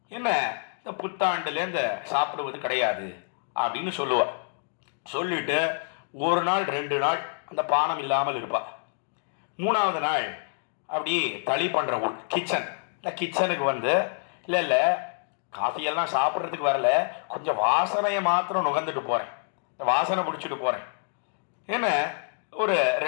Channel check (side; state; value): right; silent; digital silence